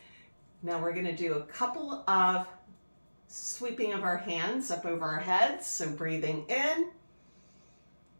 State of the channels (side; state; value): both; inverted; correlation -1.00